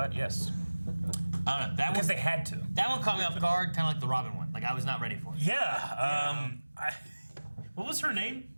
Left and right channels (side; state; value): both; inverted; correlation -1.00